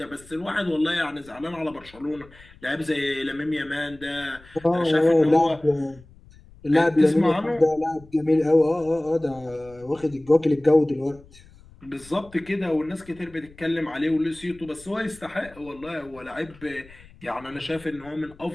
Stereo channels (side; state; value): left; noise; rumble, 23 dB below the sound